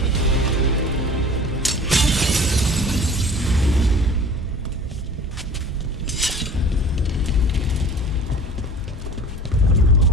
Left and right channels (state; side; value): normal; both; correlation 0.43